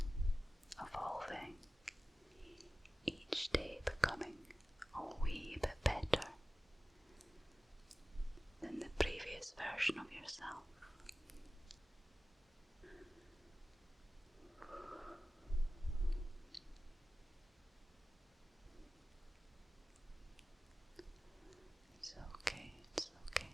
evolving, each day becoming a wee bit better than the previous version of yourself. It's okay, it's okay.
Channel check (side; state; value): both; normal; correlation 0.96